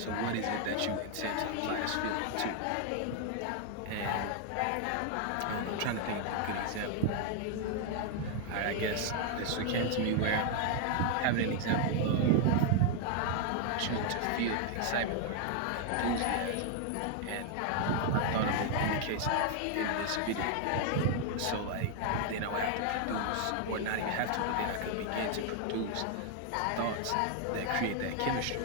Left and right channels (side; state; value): both; different; correlation 0.00